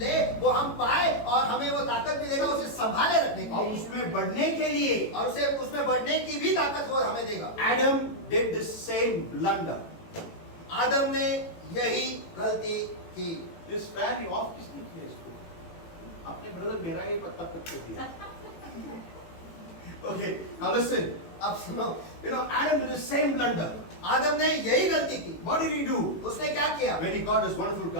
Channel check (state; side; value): late; right; 18 ms